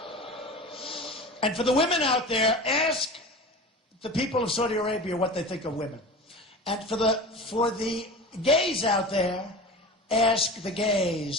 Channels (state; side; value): normal; both; correlation 0.33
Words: And for the women out there, ask the people of Saudi Arabia what they think of women. And for the gays out there, ask the